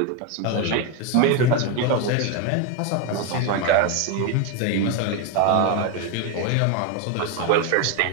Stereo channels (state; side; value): different; both; correlation 0.01